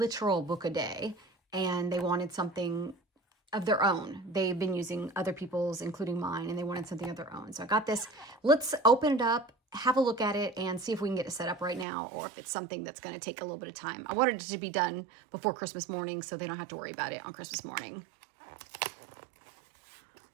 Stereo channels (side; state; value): left; drops out; at 11.9 s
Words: book a day and they wanted something of their own. They've been using other people's, including mine, and they wanted something of their own. So I got this. Let's open it up, have a look at it, and see if we can get it set up right now or if it's something that's going to take a little bit of time. I wanted it to be done before Christmas morning so they don't have to worry about it on Christmas morning.